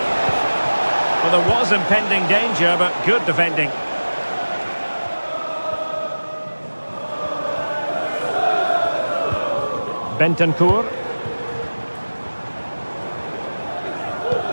Well, there was impending danger, but good defending. Bentancur.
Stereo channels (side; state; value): both; inverted; correlation -1.00